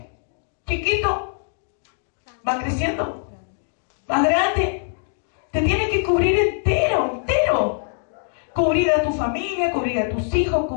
¿Chiquito? ¿Va creciendo? ¿Va grande? Te tiene que cubrir entero. Cubrir a tu familia, cubrir a tus hijos,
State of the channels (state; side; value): silent; right; 64 dB below the other